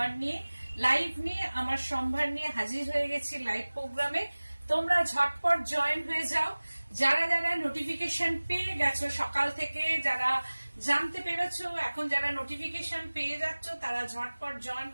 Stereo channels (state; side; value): inverted; both; correlation -1.00